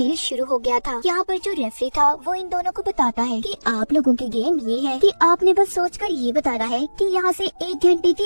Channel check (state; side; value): inverted; both; correlation -1.00